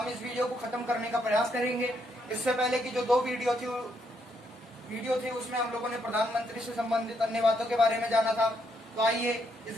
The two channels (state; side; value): normal; both; correlation 0.75